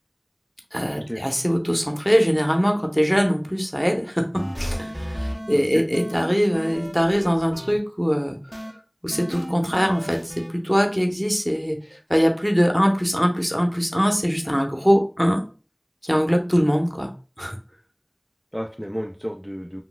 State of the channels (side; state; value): both; identical; correlation 1.00